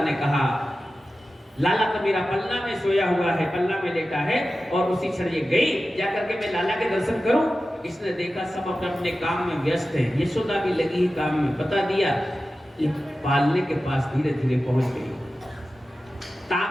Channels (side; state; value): both; normal; correlation 0.94